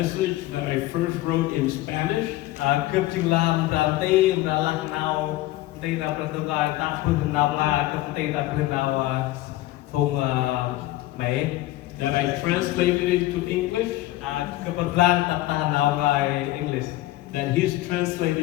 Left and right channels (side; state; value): right; quieter; 16.7 dB